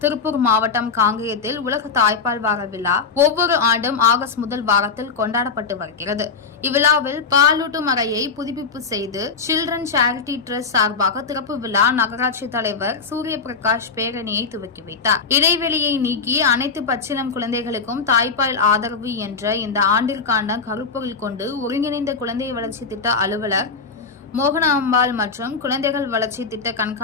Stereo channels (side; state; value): right; quieter; 5.1 dB